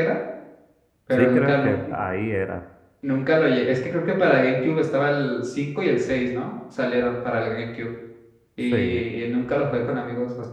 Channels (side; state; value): both; identical; correlation 1.00